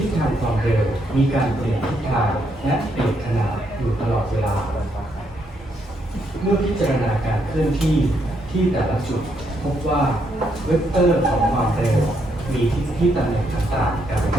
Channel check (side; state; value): both; normal; correlation 0.76